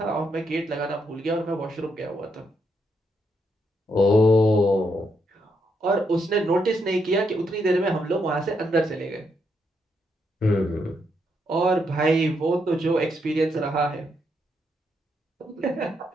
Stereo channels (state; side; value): normal; both; correlation 0.78